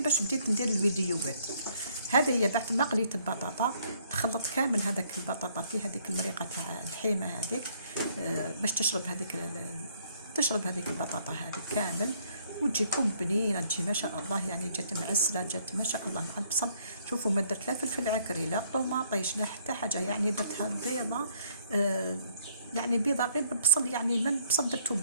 باش بديت ندير الفيديوهات. هذه هي بعد ما قليت البطاطا تخلط كامل هذاك البطاطا في هذيك المريقه تاع الحيمه هذيك باش تشرب هذيك البطاطا هذيك كامل وتجيكم بنينه تجي ما شاء الله. يعني جات معسله جات ما شاء الله مع البصل. شوفوا ما درت لا فلفل عكري لا طوماطيش لا حتى حاجه، يعني درتها بيضه يعني بيضه غير بالبصل، يعني من البصل درتو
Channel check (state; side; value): inverted; both; correlation -0.66